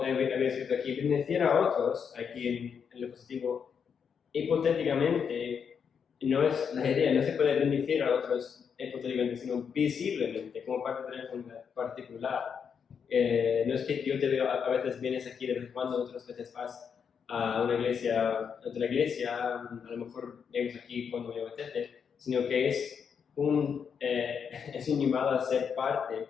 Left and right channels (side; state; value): right; quieter; 6.9 dB